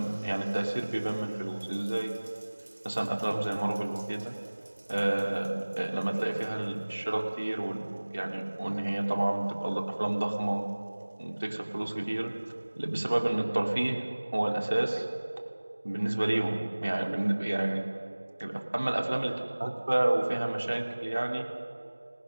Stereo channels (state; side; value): inverted; both; correlation -1.00